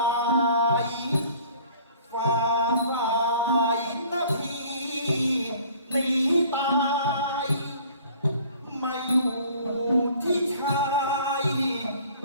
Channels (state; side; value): inverted; both; correlation -0.52